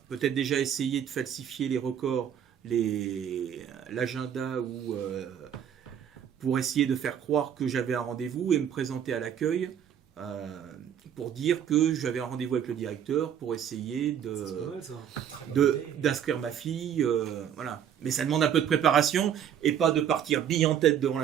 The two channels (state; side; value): quieter; left; 9.1 dB